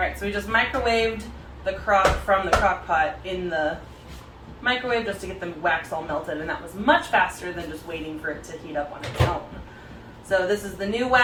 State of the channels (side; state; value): both; identical; correlation 1.00